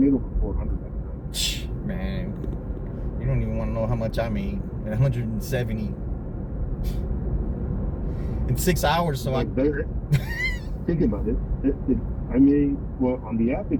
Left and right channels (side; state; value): both; identical; correlation 1.00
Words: over 400 that night. Man, you don't even want to know how much I made. 170 in 6 hours. So I think about it. I made, well, on the app it